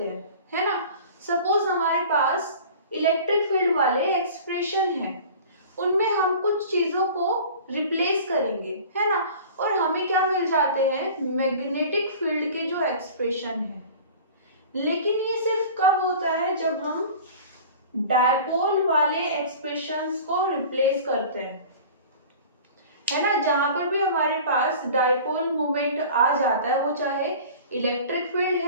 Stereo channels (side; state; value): both; inverted; correlation -0.41